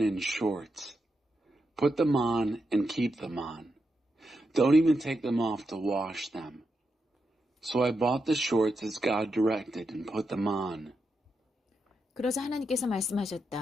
shorts. Put them on and keep them on. Don't even take them off to wash them. So I bought the shorts as God directed and put them on. 그러자 하나님께서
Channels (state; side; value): normal; both; correlation 0.86